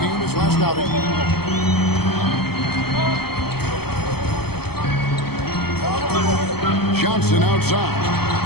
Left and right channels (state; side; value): late; right; 0.96 ms